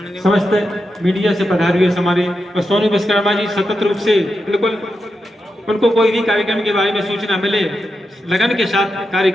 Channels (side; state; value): both; normal; correlation 0.87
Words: समस्त मीडिया से पधारे हुए हमारे सोनू विश्वकर्मा जी सतत रूप से बिल्कुल उनको कोई भी कार्यक्रम के बारे में सूचना मिले लगन के साथ कार्य